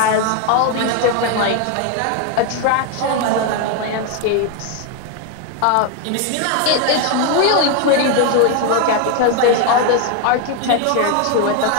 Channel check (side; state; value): both; different; correlation 0.01